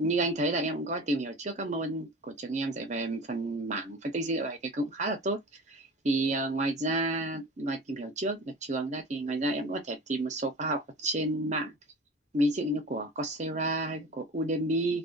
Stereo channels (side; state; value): both; normal; correlation 0.36